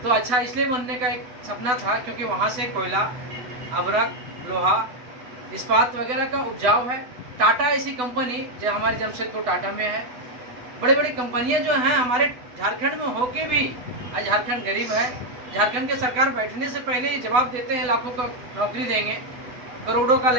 तो अच्छा इसलिए बनने का एक सपना था क्योंकि वहाँ से कोयला, अभ्रक, लोहा, इस्पात वगैरह का उपजाऊ है। टाटा ऐसी कंपनी जो हमारे जमशेदपुर टाटा में है, बड़ी बड़ी कंपनियां जो हैं हमारे झारखंड में होके भी आज झारखंड गरीब है। झारखंड के सरकार बैठने से पहले ही जवाब देते हैं लाखों का नौकरी देंगे, करोड़ों का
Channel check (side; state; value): left; late; 8.0 ms